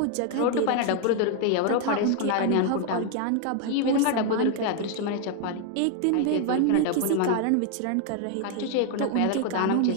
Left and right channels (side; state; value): both; different; correlation 0.00